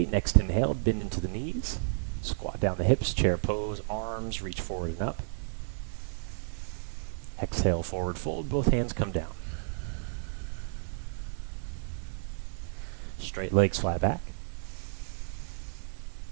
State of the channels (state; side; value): silent; left; digital silence